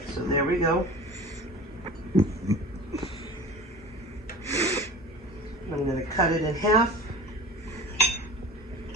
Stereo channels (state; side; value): normal; both; correlation 0.37